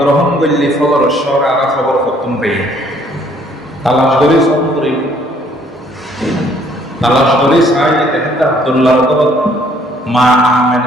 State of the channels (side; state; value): both; normal; correlation 0.62